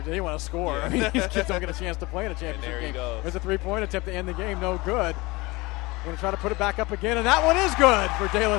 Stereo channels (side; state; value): right; quieter; 22.9 dB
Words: They want to score. Yeah. I mean, these kids don't get a chance to play in a championship game. There's a 3-point attempt to end the game. No good. We're going to try to put it back up again, and that one is good for De La